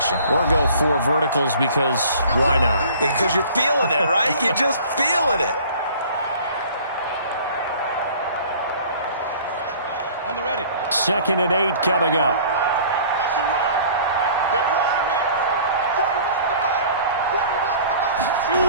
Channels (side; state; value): both; inverted; correlation -0.49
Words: Or go 4 verticals because why not? Because you're feeling it, right? You're just feeling it. On the ready. 2nd and 8 coming up. That's a run. They're running it.